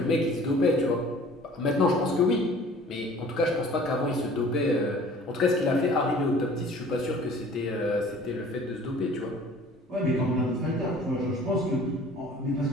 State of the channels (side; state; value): both; normal; correlation 0.49